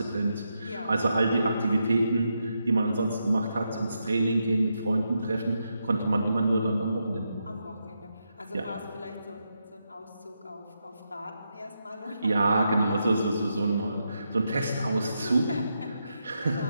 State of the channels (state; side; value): inverted; both; correlation -0.84